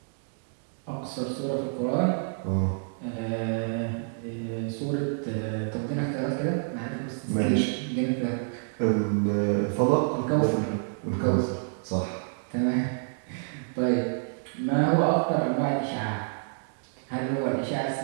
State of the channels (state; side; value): silent; left; digital silence